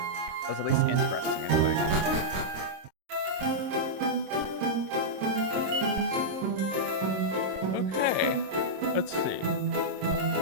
That's at least interesting, anyway.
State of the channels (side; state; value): left; late; 26 ms